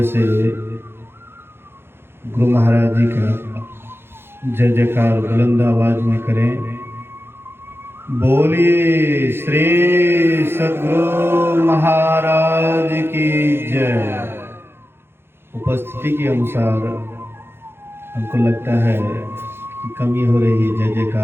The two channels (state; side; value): late; left; 0.11 ms